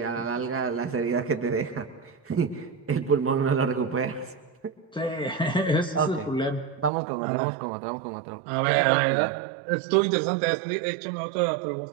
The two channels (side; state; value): left; drops out; at 6.9 s